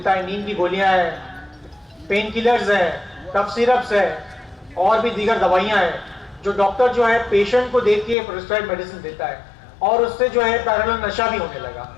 है। नींद की गोलियां हैं, पेन किलर्स है, कफ सिरप्स है और भी दीगर दवाइयां हैं, जो डॉक्टर जो है पेशेंट को देख के प्रिस्क्राइब मेडिसिन देता है और उससे जो है पैरेलल नशा भी होने लगा।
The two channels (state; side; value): drops out; right; at 8.2 s